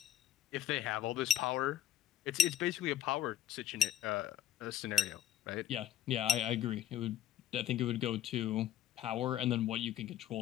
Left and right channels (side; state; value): right; quieter; 11.0 dB